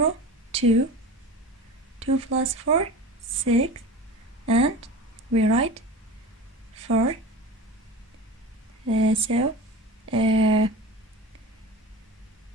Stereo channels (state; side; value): normal; both; correlation 0.32